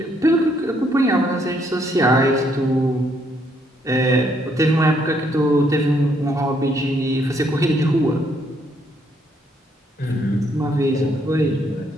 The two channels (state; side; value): normal; both; correlation 0.71